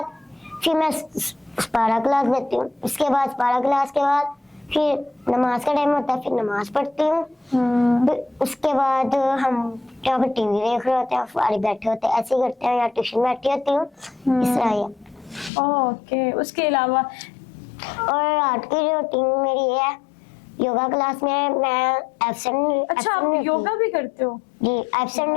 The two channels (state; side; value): drops out; right; at 15.5 s